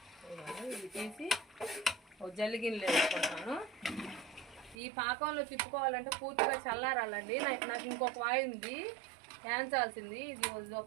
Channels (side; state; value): left; drops out; at 4.8 s